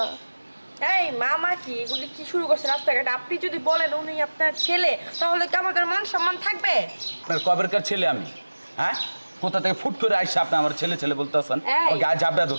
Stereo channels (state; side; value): inverted; both; correlation -1.00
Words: এই মামা কি এগুলি কি শুরু করছে রাস্তাঘাটে? আপনি যদি বলেন উনি আপনার ছেলে তাহলে কি আমাদের মান সম্মান থাকবে? আপনার কবেরকার ছেলে আমি? হ্যাঁ কোথা থেকে ফুট করে আইসা আপনি আমার ছেলে ছেলে বলতে আছেন? এই। গায়ে জাবড়া